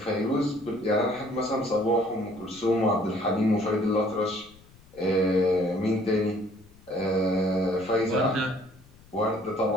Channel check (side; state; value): left; noise; rumble, 26 dB below the sound